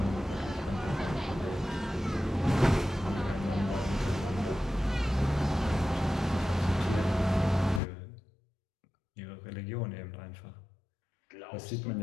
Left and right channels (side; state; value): right; drops out; at 7.8 s